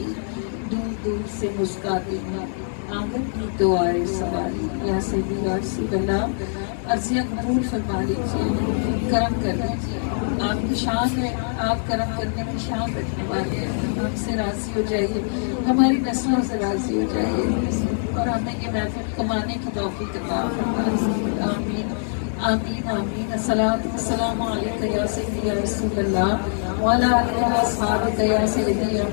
دور دور سے مسکاتی ہوں آنگن بھی تو آئے سواری، یا سیدی یا رسول اللہ عرضیہ قبول فرما لیجیے، کرم کر لیجیے، آپ کی شان ہے، آپ کرم کرنے کی شان رکھنے والے ہیں، ہم سے راضی ہو جائیے، ہماری نسلوں سے راضی ہو جائیے، اور ہمیں یہ محفل کمانے کی توفیق عطا فرمائیے، آمین آمین آمین۔ الصلاۃ والسلام علیک یا سیدی یا رسول اللہ وعلی آلہ واصحابہ یا سیدی یا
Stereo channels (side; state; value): right; silent; digital silence